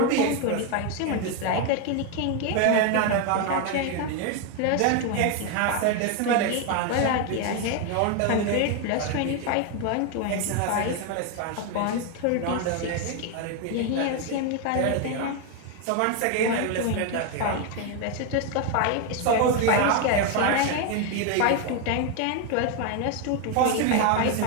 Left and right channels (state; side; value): different; both; correlation 0.01